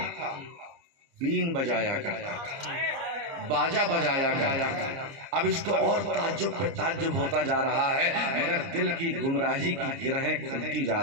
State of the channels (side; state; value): left; late; 30 ms